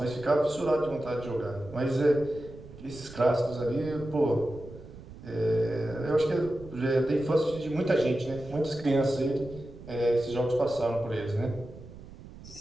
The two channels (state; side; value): noise; right; rumble, 16 dB below the sound